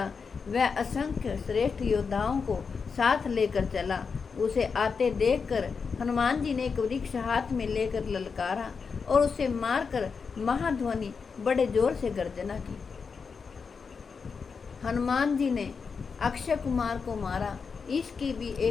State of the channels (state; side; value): quieter; right; 5.4 dB